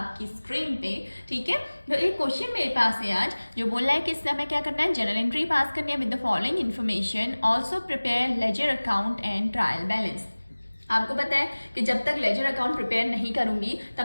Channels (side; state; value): both; inverted; correlation -1.00